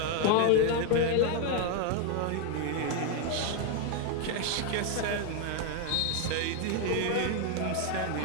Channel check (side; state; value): both; different; correlation 0.01